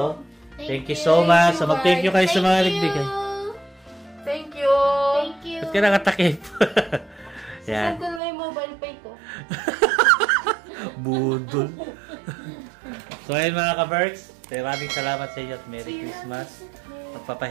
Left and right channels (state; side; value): drops out; left; at 8.2 s